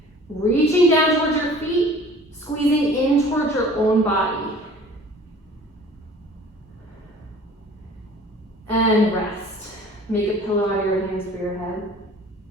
Reaching down towards your feet, squeezing in towards your own body. And rest. Make a pillow out of your hands for your head.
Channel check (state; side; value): normal; both; correlation 0.48